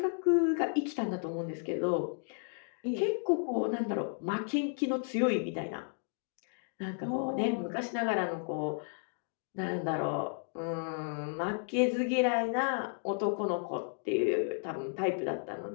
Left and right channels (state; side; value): silent; right; 55 dB below the other